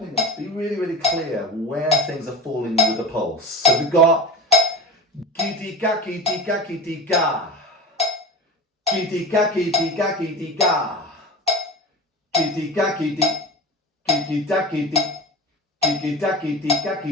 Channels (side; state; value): both; normal; correlation 0.30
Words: us be really, really clear where things are falling with the pulse. So we've got gidi-ga-gidi-ga-gidi-ga, gidi-ga-gidi-ga-gidi-ga, gidi-ga-gidi-gigi-da-gidi,